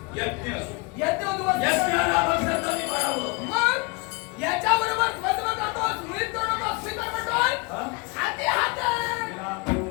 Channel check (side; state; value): right; quieter; 28.4 dB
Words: यज्ञ. यज्ञ उद्ध्वस्त. यज्ञाला भक्षाचं करावं. मग याच्या बरोबर द्वंद्व करतोस, मुळीत करू नकोस, मी तर म्हणतोय हा? हाती हाते.